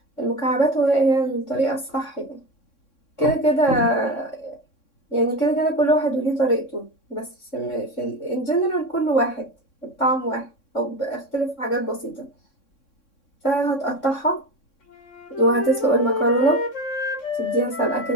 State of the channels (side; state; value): right; late; 3.6 ms